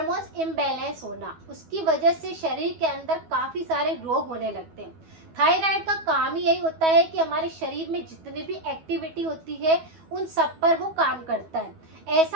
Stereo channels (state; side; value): late; left; 12 ms